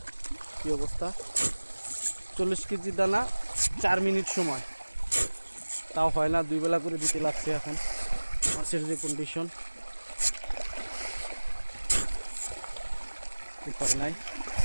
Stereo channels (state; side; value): inverted; both; correlation -1.00